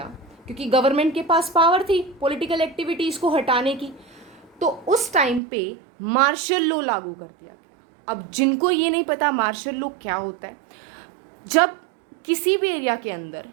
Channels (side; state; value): left; drops out; at 5.4 s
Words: क्योंकि गवर्नमेंट के पास पावर थी पॉलिटिकल एक्टिविटीज़ को हटाने की, तो उस टाइम पे मार्शल लॉ लागू कर दिया। अब जिनको ये नहीं पता मार्शल लॉ क्या होता है, जब किसी भी एरिया के अंदर